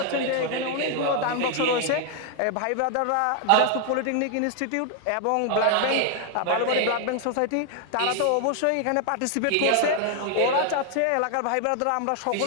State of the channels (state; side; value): different; both; correlation 0.00